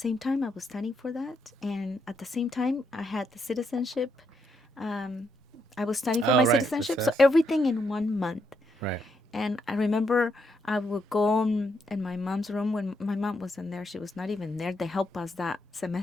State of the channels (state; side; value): normal; both; correlation 0.78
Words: time, I was studying for that, and at the same time, I had the citizenship. Um, I was studying for Oh my right, the citizenship, so test. everything in 1 month. Right. And I remember I would go in my mom's room when my mom wasn't there. She was not even there to help us that